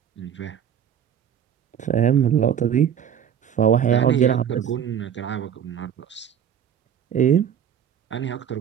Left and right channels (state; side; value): quieter; left; 8.9 dB